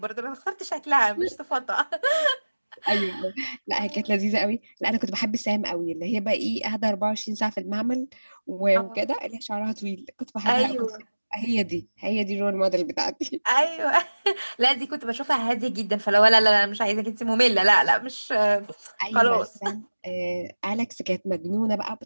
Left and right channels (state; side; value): inverted; both; correlation -1.00